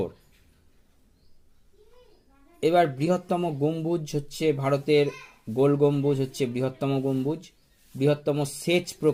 এবার বৃহত্তম গম্বুজ হচ্ছে ভারতের গোল গম্বুজ হচ্ছে বৃহত্তম গম্বুজ। বৃহত্তম সেচ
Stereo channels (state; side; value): identical; both; correlation 1.00